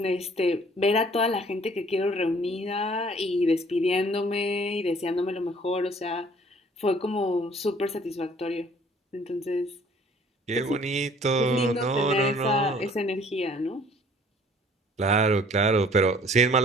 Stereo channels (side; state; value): both; normal; correlation 0.55